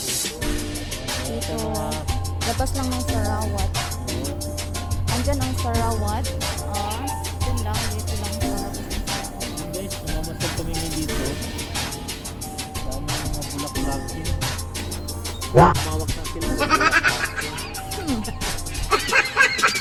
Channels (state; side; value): identical; both; correlation 1.00